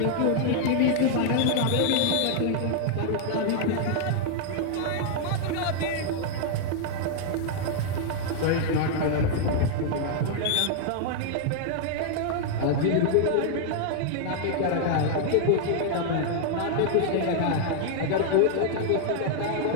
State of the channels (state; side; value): different; both; correlation -0.01